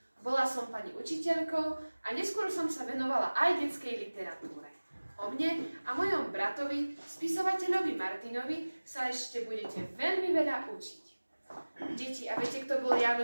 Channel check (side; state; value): both; inverted; correlation -1.00